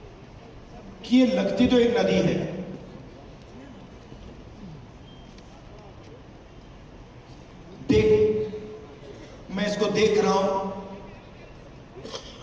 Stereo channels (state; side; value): identical; both; correlation 1.00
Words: कि ये लगती तो एक नदी है, मैं इसको देख रहा हूं,